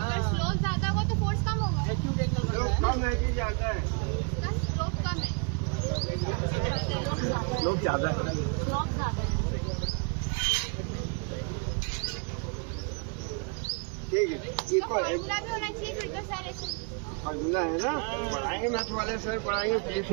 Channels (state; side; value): quieter; left; 35.2 dB